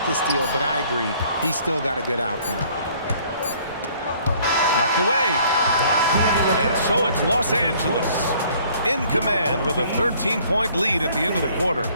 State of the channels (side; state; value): both; inverted; correlation -0.58